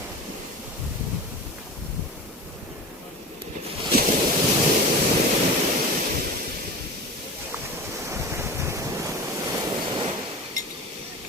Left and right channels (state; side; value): normal; both; correlation 0.32